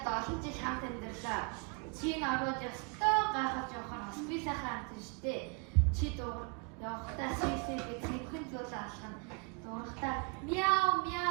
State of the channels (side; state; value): left; quieter; 32.5 dB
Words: 7 жил хамт амьдралаа. Чи наваад ёстой гайхаж явахаар бас би сайхан амт штэ. Чи явахдаа сэлсэл гэж цэвхэн зүйл алхана. Дуурахтаа мяу